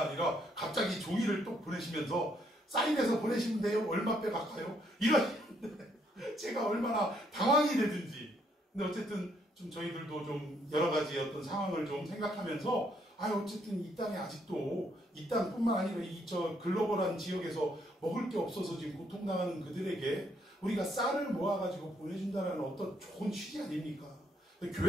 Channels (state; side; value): normal; both; correlation 0.71